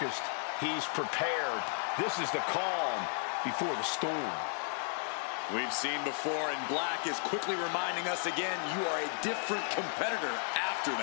He's prepared. This is the calm before the storm. We've seen before, and Black is quickly reminding us again, you are a different competitor after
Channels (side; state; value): right; silent; 55 dB below the other